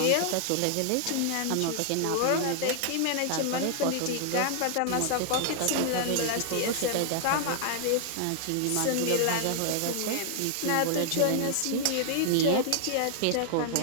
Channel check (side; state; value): both; different; correlation 0.00